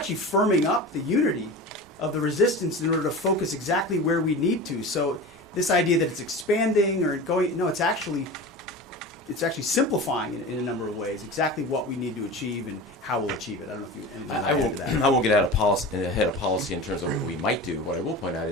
firming up the unity of the resistance in order to focus exactly where we need to. So this idea that it's expanding or going, no, it's actually simplifying in a number of ways exactly what we need to achieve and how we'll achieve it. I don't know if you anything to add to that. I won't get ahead of policy in terms of what we might do. What I will point out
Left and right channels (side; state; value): both; normal; correlation 0.32